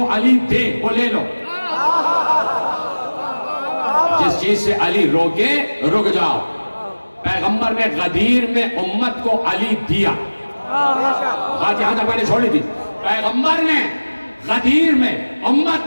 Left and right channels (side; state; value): both; inverted; correlation -1.00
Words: علی دے وہ لے لو، جس چیز سے علی روکے رک جاؤ. پیغمبر نے غدیر میں امت کو علی دیا. بات یہاں تک میں نے چھوڑی تھی. پیغمبر نے غدیر میں